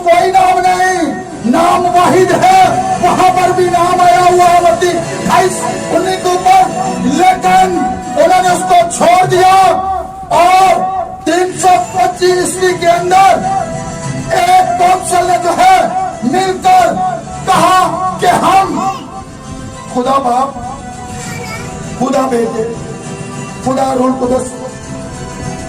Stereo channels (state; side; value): identical; both; correlation 1.00